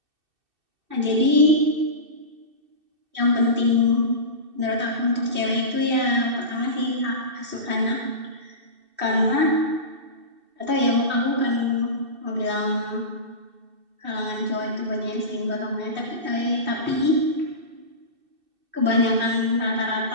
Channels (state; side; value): late; left; 2.6 ms